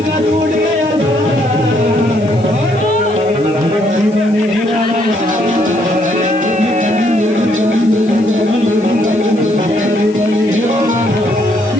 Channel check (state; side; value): noise; left; hiss, 26 dB below the sound